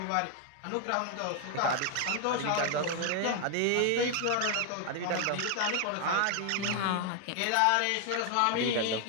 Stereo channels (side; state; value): both; different; correlation 0.00